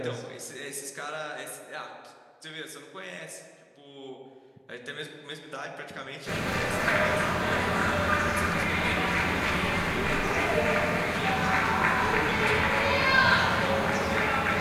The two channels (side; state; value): both; identical; correlation 1.00